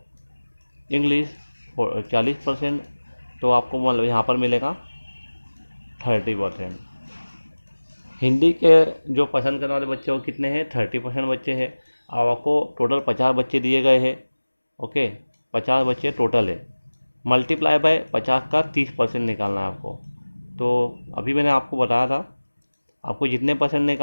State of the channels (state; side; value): inverted; both; correlation -1.00